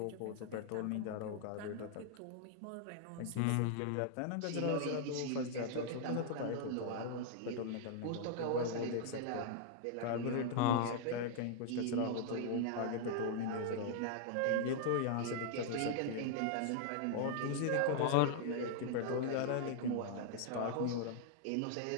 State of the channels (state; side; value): different; both; correlation -0.01